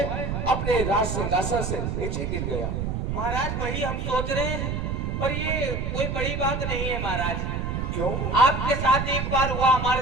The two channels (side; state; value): right; noise; rumble, 2 dB below the sound